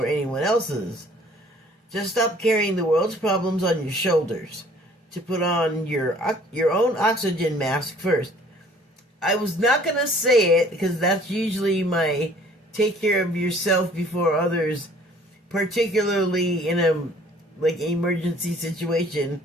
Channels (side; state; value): both; normal; correlation 0.55